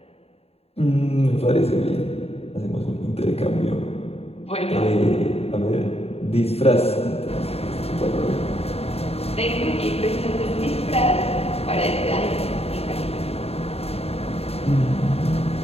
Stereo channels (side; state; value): right; late; 0.29 ms